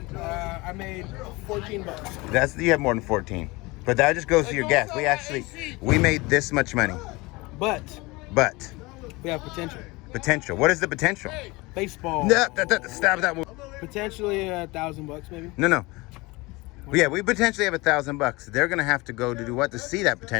I made $14. You have more than 14, but that just goes to your gas. We made this much money, But but we have potential. potential. What is the potential? Baseball. No, stop that. Potentially $1,000 maybe. No. Yeah, we potentially have $1,000. They're gonna have to go to do what to see that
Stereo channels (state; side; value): quieter; right; 23.5 dB